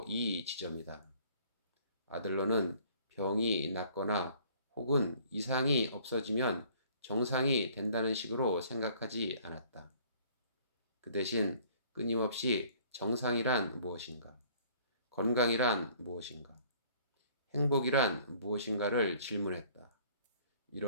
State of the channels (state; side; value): inverted; both; correlation -0.56